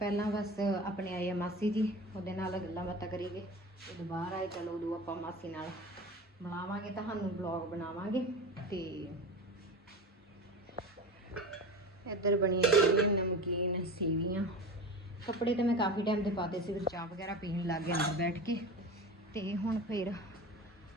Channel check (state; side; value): normal; both; correlation 0.31